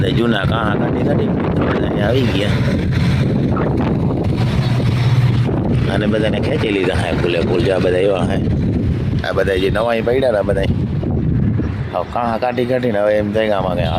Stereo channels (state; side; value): identical; both; correlation 1.00